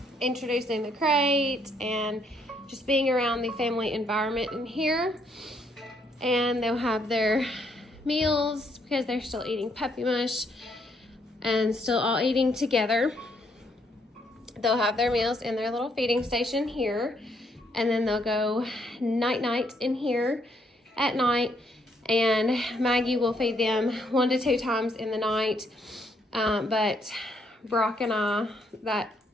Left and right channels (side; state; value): both; normal; correlation 0.71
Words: introducing the crate and just being around the family environment in here. And they'll have their meals because they're still eating puppy mush and still all eating together. They'll have their meals in their little feeding station here, and then they'll go night-night in here at night, and Maggie will feed them 1 to 2 times in the night, but Brock and I, that couch